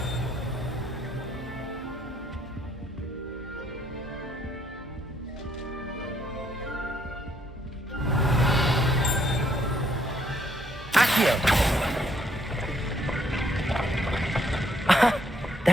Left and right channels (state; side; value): normal; both; correlation 0.69